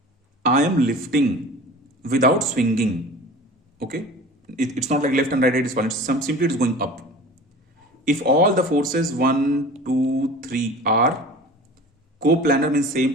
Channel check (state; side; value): normal; both; correlation 0.39